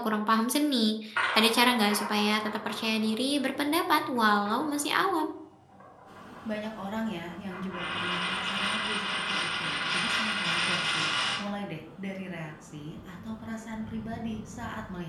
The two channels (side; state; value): both; identical; correlation 1.00